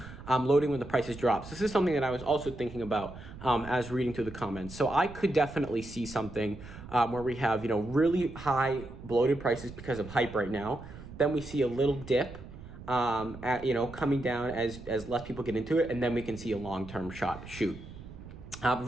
loading when the prices drop. So this is something that I was also thinking about as reading through the comments. So I could definitely see something where we have, you know, really high bloated prices because of hype right now. Then we see a little dip, you know, coming down as less people get into it, and then we can see a long-term shoot.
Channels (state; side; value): noise; right; rumble, 14 dB below the sound